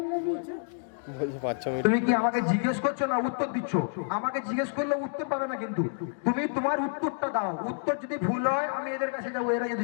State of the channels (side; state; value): right; silent; digital silence